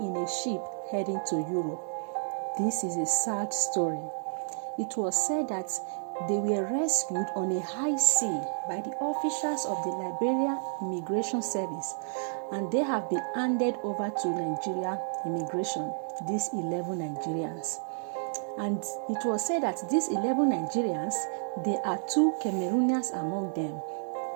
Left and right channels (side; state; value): left; silent; digital silence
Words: in a ship heading to Europe. This is a sad story. It was said that they were rescued on a high sea by the officials of the Liberian Immigration Service, and they have been handed over to Nigeria Immigration, these 11 Nigerians. And it was said that these 11 Nigerians, there are 2 Cameroonians among them.